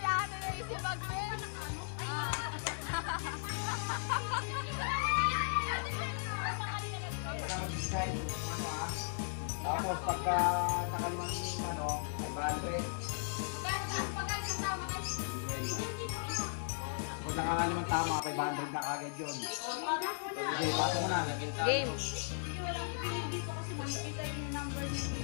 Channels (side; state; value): right; silent; 53 dB below the other